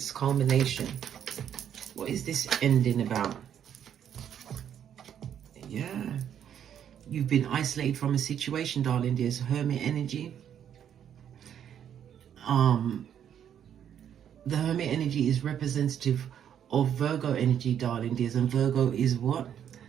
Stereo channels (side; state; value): left; quieter; 9.3 dB